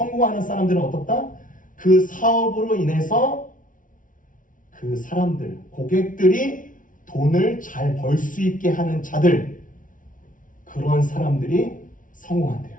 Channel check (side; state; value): right; late; 0.38 ms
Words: 사람들은 어떻다? 그 사업으로 인해서 그 사람들, 고객들이 돈을 잘 벌 수 있게 하는 자들, 그런 사람들이 성공한대요.